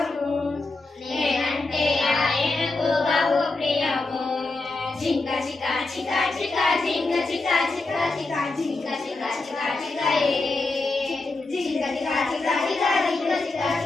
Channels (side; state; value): right; quieter; 3.3 dB